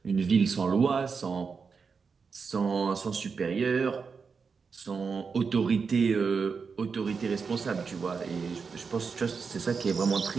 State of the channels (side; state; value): left; quieter; 5.4 dB